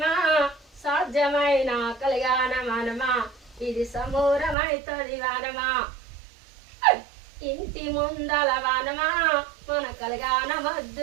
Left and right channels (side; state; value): left; drops out; at 4.5 s